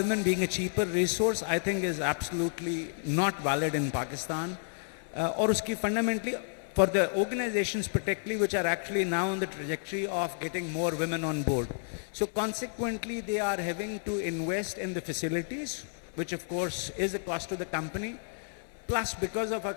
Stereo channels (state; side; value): silent; right; digital silence